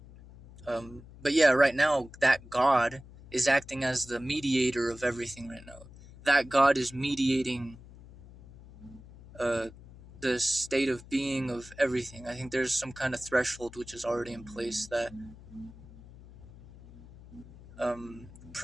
But yeah, right now that God is acting as the mediator of everything right now. That God is mediating uh, the state of being of everything. I think there's some kind of threshold which is already in place that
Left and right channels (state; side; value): noise; left; hum, 19 dB below the sound